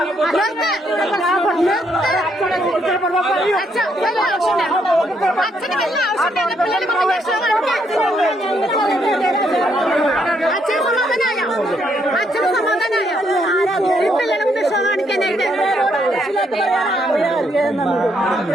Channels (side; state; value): both; normal; correlation 0.73